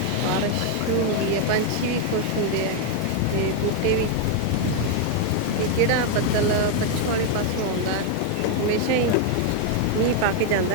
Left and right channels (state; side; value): different; both; correlation 0.01